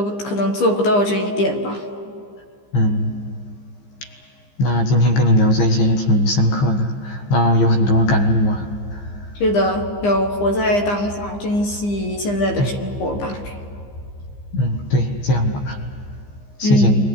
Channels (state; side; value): late; right; 15 ms